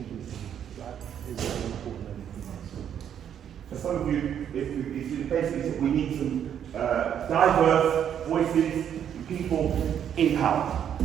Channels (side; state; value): left; quieter; 9.2 dB